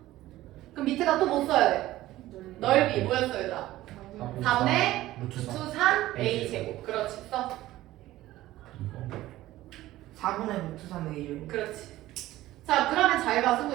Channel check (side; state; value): left; quieter; 15.8 dB